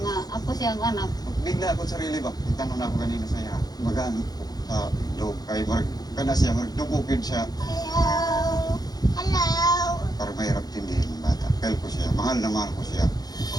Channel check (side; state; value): right; late; 0.19 ms